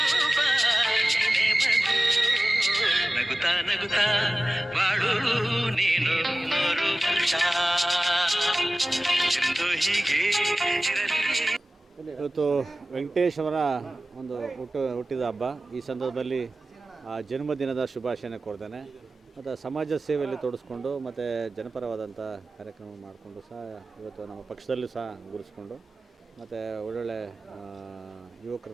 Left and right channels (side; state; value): both; normal; correlation 0.97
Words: ನೀನೆ ಮಗು ನಗುತ್ತಾ ನಗುತ್ತಾ ಬಾಳು ನೀನು ನೂರು ವರ್ಷ ಎಂದು ಹೀಗೆ ಇರಲಿ. ಇವತ್ತು ವೆಂಕಟೇಶ್ ಅವರ ಒಂದು ಹುಟ್ಟಿದ ಹಬ್ಬ. ಈ ಸಂದರ್ಭದಲ್ಲಿ ಜನ್ಮದಿನದ ಶುಭಾಶಯನ ಕೊಡ್ತೇನೆ. ಮತ್ತು ಸಮಾಜ ಸೇವೆಯಲ್ಲಿ ತೊಡಸ್ಕೊಂಡು ಮತ್ತು ಜನಪರವಾದಂಥ ಕಾರ್ಯಕ್ರಮ ಮಾಡಿಕೊಂಡು ಸಹ ಇವತ್ತು ನಮ್ಮ ಪಕ್ಷದಲ್ಲೂ ಸಹ ಗುರುಸ್ಕೊಂಡು ಮತ್ತು ಒಳ್ಳೊಳ್ಳೆ